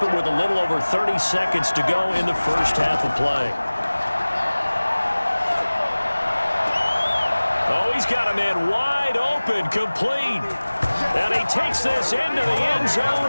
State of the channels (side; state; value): both; inverted; correlation -1.00